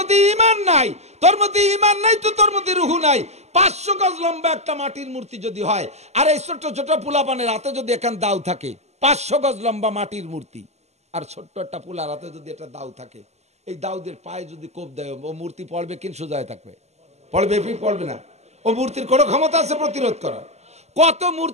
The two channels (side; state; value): left; late; 0.32 ms